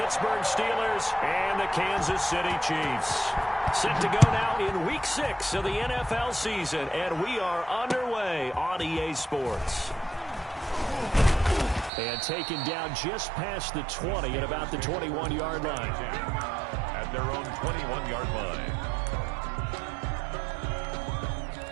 Steelers and the Kansas City Chiefs. Set to go now in Week 6 of the NFL season, and we are underway on EA Sports. And taken down just past the 20 at about the 21-yard line. At their own 21-yard line.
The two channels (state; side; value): drops out; left; at 11.9 s